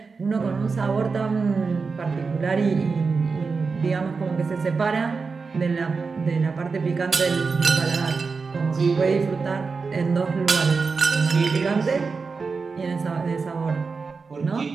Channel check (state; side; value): quieter; left; 4.7 dB